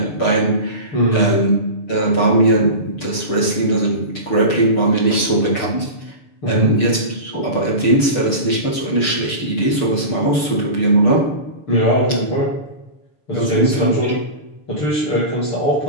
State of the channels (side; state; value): right; late; 6.5 ms